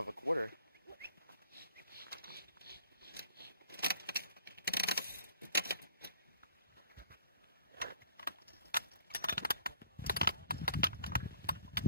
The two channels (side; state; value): both; inverted; correlation -0.56